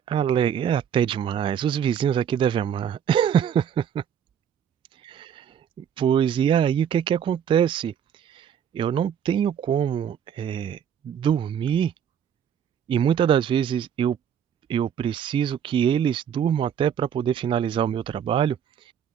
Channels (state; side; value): quieter; left; 8.6 dB